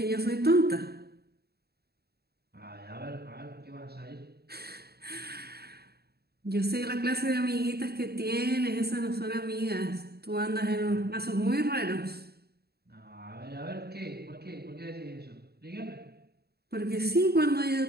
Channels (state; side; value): late; left; 0.46 ms